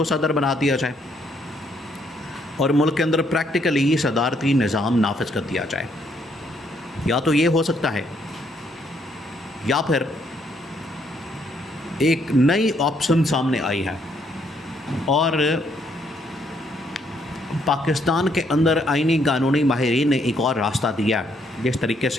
सदर बना दिया जाए और मुल्क के अंदर प्रैक्टिकली सदारती निज़ाम नाफिज कर दिया जाए। या तो ये हो सकता है, या फिर एक नई ऑप्शन सामने आई है और पाकिस्तान के अंदर आइनी कानूनी माहिरीन ने एक और रास्ता दिया, जिस तरीके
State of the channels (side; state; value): both; normal; correlation 0.71